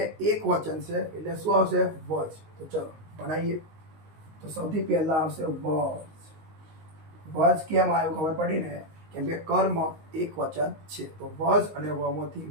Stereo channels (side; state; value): left; late; 19 ms